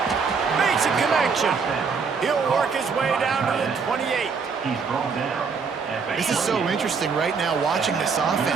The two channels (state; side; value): quieter; left; 5.4 dB